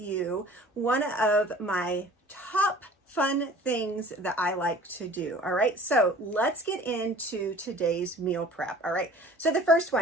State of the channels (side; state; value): both; normal; correlation 0.47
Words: one of my top fun things that I like to do. All right, so let's get into today's meal prep. All right, so the first